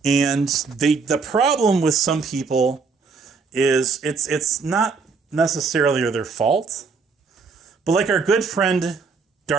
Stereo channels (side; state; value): left; quieter; 4.9 dB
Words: And the problem with some people is it's not necessarily their fault, but like our good friend